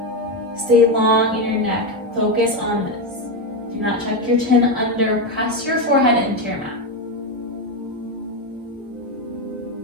Stay long in your neck. Focus on this. Do not tuck your chin under. Press your forehead into your mat.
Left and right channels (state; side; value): normal; both; correlation 0.10